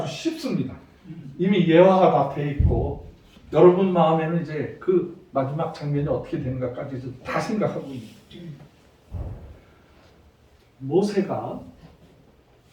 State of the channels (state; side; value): identical; both; correlation 1.00